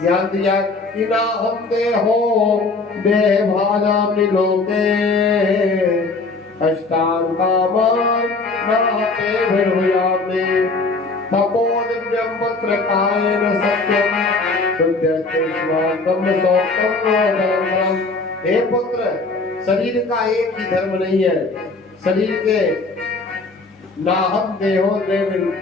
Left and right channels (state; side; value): quieter; right; 3.7 dB